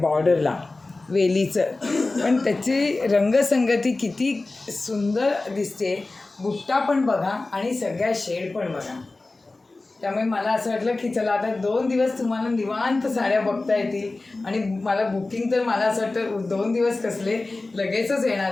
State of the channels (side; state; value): right; quieter; 3.3 dB